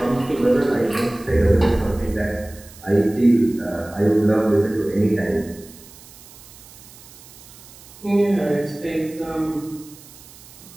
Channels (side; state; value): right; noise; hiss, 21 dB below the sound